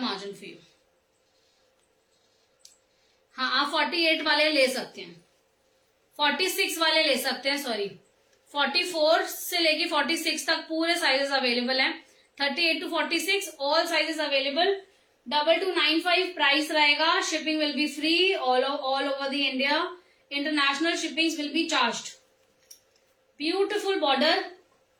margin for you. हाँ, आप 48 वाले ले सकते हैं, 46 वाले ले सकते हैं. सॉरी 44 से लेके 46 तक पूरे साइजेस अवेलेबल हैं. 38 to 46 all sizes available. 2295 price रहेगा. Shipping will be free all over the India. International shipping will be charged. Beautiful border.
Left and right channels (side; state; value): both; identical; correlation 1.00